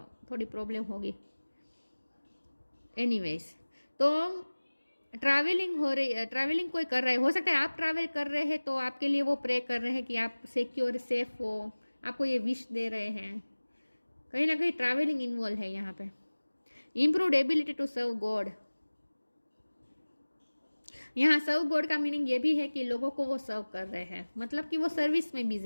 थोड़ी प्रॉब्लम होगी। एनीवेज, तो ट्रैवलिंग हो रही है, ट्रैवलिंग कोई कर रहा है, हो सकता है आप ट्रैवल कर रहे हैं तो आपके लिए वो प्रे कर रहे हैं कि आप सिक्योर सेफ हो, आपको ये विश दे रहे हैं, कहीं ना कहीं ट्रैवलिंग इन्वॉल्व है यहाँ पे। Improved ability to serve God, यहाँ सर्व गॉड का मीनिंग ये भी है कि लोगों को वो सर्व कर रहे हैं, मतलब कि वो सर्विस में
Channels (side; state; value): both; inverted; correlation -1.00